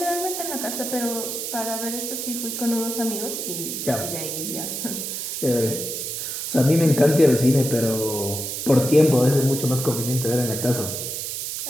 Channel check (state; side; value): noise; right; hiss, 4 dB below the sound